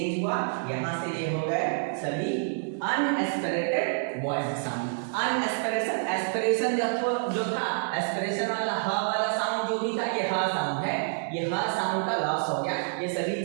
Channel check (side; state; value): left; silent; digital silence